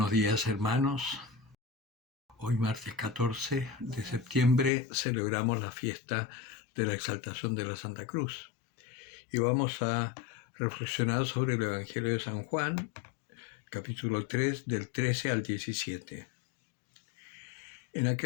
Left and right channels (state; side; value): drops out; right; at 4.7 s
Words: días, hermanos. Hoy, martes 14 de septiembre, celebramos la fiesta de la exaltación de la Santa Cruz. Y vamos a reflexionar sobre el Evangelio de San Juan, capítulo 3, del 13 al 17. En